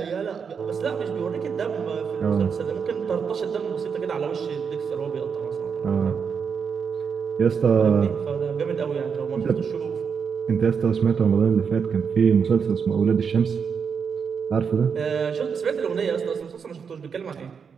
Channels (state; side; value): quieter; left; 6.4 dB